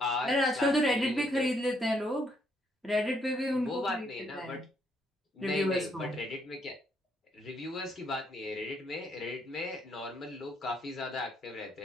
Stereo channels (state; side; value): normal; both; correlation 0.72